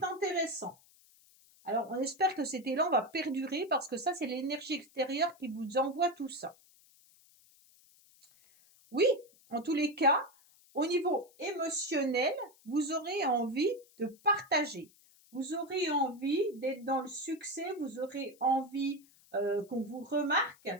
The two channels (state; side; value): noise; left; hiss, 28 dB below the sound